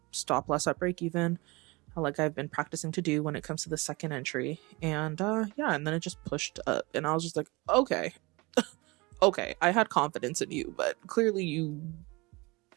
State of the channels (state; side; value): quieter; left; 24.9 dB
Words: stop loss at break even, like I've been practicing to do when it comes to the second entry. And yeah, and then it just pushed up, and I was just like, okay, okay, I had confidence in you, but clearly you